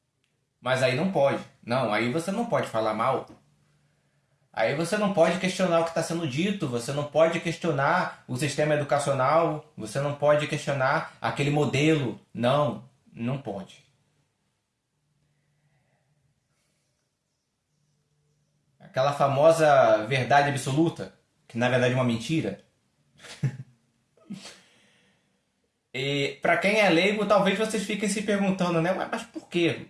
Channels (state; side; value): identical; both; correlation 1.00